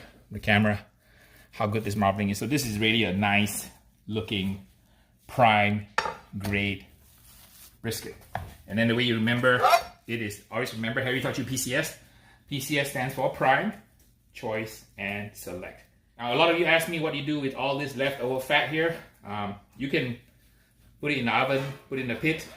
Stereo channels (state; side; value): identical; both; correlation 1.00